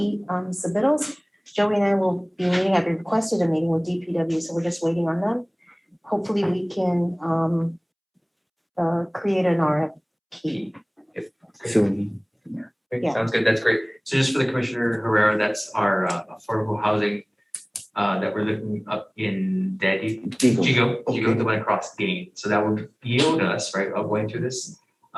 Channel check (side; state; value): both; identical; correlation 1.00